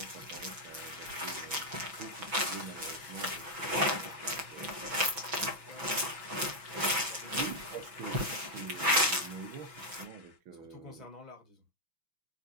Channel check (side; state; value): left; late; 6.1 ms